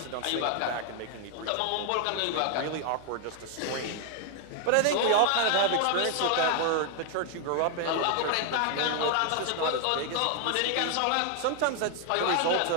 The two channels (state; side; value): different; both; correlation 0.00